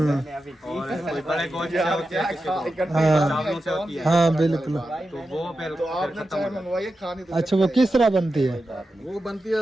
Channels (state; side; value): normal; both; correlation 0.91